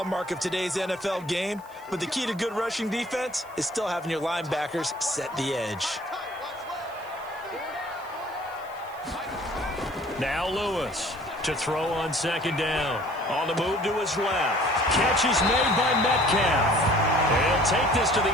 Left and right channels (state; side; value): noise; right; hiss, 26 dB below the sound